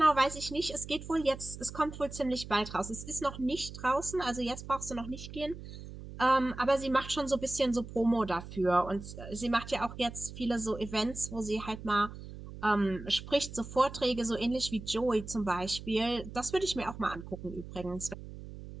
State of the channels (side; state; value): right; noise; hum, 12 dB below the sound